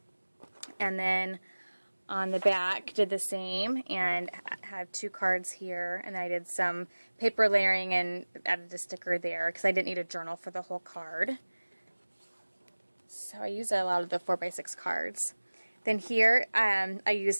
And then on the back, did the same, and have 2 cards here. And then I did some paper layering and added a sticker there because I didn't need a journal for the whole card. So I used a lot of the 4x6 cards. Then here, I used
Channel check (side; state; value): both; inverted; correlation -1.00